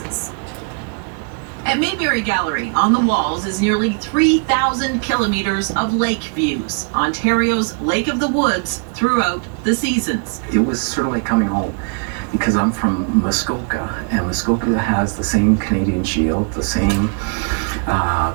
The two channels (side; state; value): left; quieter; 39.2 dB